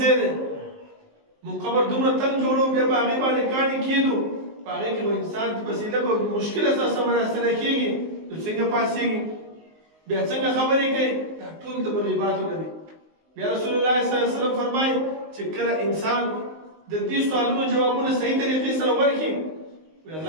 دی موږ قبر دومره تنګ جوړو بیا په هغې باندې کاڼي کېدو په هغې کې به انسان په وسیله به مشکله سره سمراسره کېږي نو څنګه پاسېږي بیا څنګه خبرې کوي دا ټول د مغیباتو نه دي. بیا رسول الله صلی الله علیه وسلم فرمایي چې کله انسان د دې سوالونو جوابونه صحیح طریقې سره ورکړي وی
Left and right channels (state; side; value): late; left; 19 ms